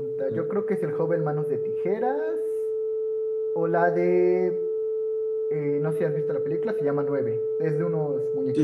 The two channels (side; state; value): both; identical; correlation 1.00